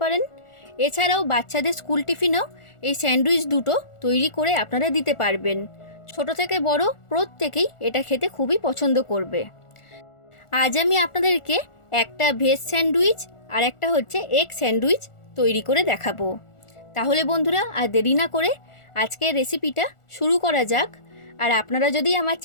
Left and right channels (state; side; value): late; right; 1.4 ms